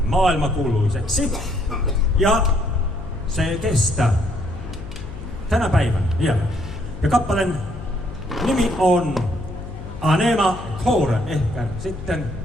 maailmankuuluiseksi. Ja se kestää tänä päivänä vielä. Ja kappaleen nimi on Anima Core, ehkä sitten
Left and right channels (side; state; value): left; noise; hum, 12 dB below the sound